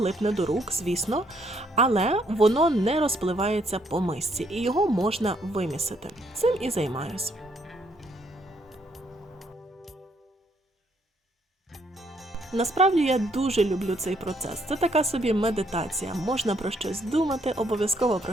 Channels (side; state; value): both; normal; correlation 0.70